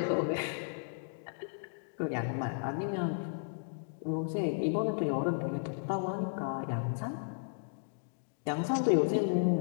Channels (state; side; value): silent; right; digital silence